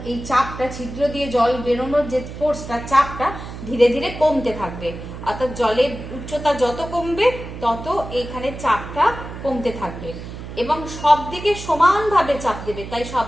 এই চাপটা, ছিদ্র দিয়ে জল বেরোনোর যে ফোর্সটা, চাপটা ধীরে ধীরে কমতে থাকবে। অর্থাৎ জলের উচ্চতা যত কমবে, তত এখানে চাপটা কমতে থাকবে এবং সব দিকে সমানভাবে চাপ দেবে। তাই সব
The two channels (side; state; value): right; noise; hum, 11 dB below the sound